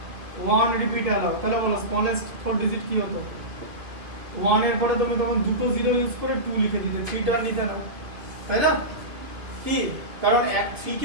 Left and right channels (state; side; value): late; left; 2.8 ms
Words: 1 রিপিট অ্যালাউ। তাহলে বলো স্মলেস্ট 4 ডিজিট কি হতো? 1 এর পরে তুমি তখন দুটো 0 ইউজ করে 2 লিখে দিতে, 3 টা নিতে না, তাই না? কি কারণ 3